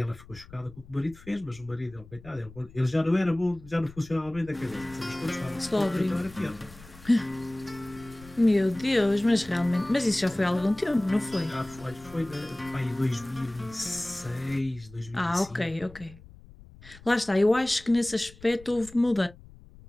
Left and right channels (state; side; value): noise; left; rumble, 21 dB below the sound